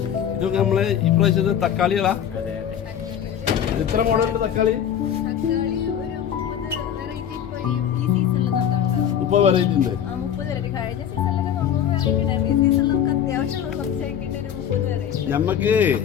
ഇതൊക്കെ നമ്മള് ഇപ്രാവശ്യത്തെ തക്കാളികളാ? എത്ര മോഡലുണ്ട് തക്കാളി? ഇപ്പൊ വെറൈറ്റി ഉണ്ട്. നമുക്ക്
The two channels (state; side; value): quieter; right; 9.3 dB